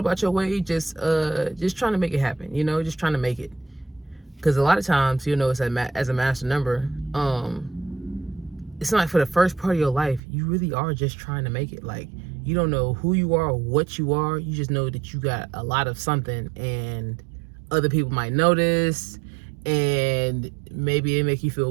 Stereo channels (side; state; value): left; drops out; at 10.2 s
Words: your way, just trying to make it happen, you know, just trying to make it. Because a lot of times, you know, as a master number, it's not like for the first part of your life, you really are just trying to make it. Like, you don't know who you are or what you are. You just know that you got a lot of something, and other people might notice, and maybe it make you